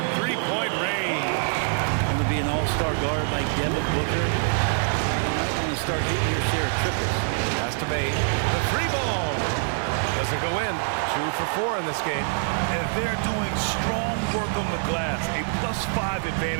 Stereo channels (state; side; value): silent; left; 62 dB below the other